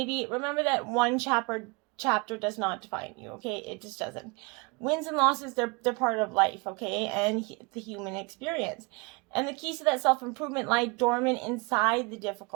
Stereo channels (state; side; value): quieter; left; 28.9 dB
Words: remember that one chapter does not define you, okay? It just doesn't. Wins and losses, they're part of life, okay, and the human experience. And the keys to that self-improvement lie dormant inside the